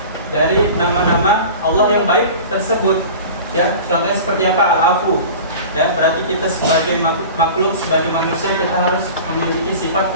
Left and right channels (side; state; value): both; inverted; correlation -0.37